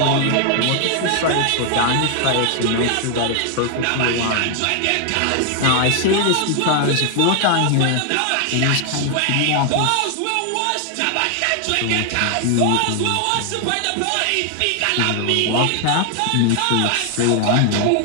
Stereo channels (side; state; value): both; different; correlation 0.00